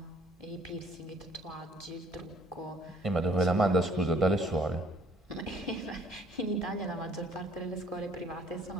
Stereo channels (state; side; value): normal; both; correlation 0.59